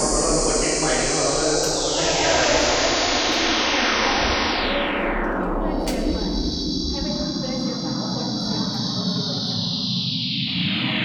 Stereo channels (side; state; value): both; identical; correlation 1.00